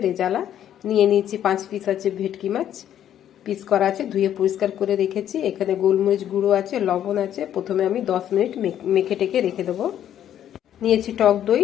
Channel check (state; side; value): quieter; right; 10.6 dB